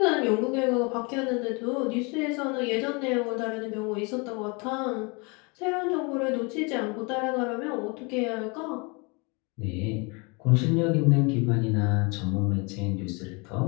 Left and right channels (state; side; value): quieter; right; 30.0 dB